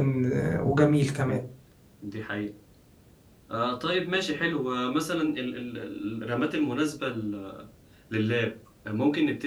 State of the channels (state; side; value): identical; both; correlation 1.00